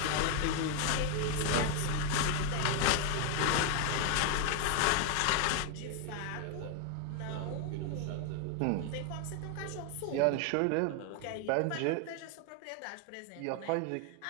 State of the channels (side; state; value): both; different; correlation 0.00